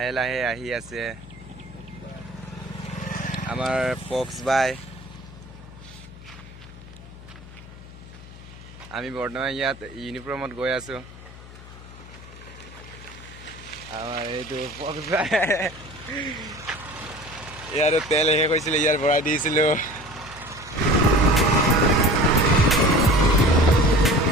লাহে আহি আছে আমাৰ পক্স বাই আমি বৰ্তমান ইয়াত ইউনিফৰ্মত গৈ আছো আমাৰ এইটো পক্স বাই ইয়াৰ তেল শেষ হৈছিল ইয়াৰ ভৰাই দিছিলো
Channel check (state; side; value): noise; left; hum, 17 dB below the sound